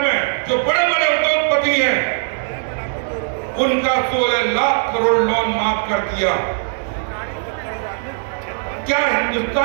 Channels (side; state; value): left; silent; digital silence